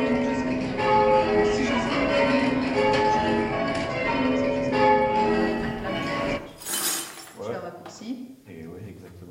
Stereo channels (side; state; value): both; identical; correlation 1.00